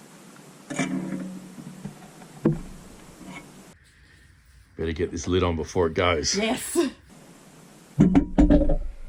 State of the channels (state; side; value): identical; both; correlation 1.00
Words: Better get this lid on before it goes. Yes.